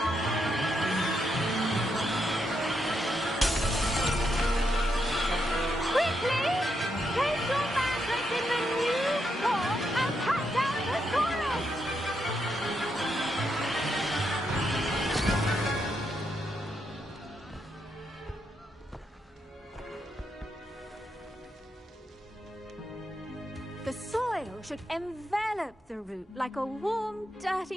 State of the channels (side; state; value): both; normal; correlation 0.81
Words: The soil should envelop the root like a warm,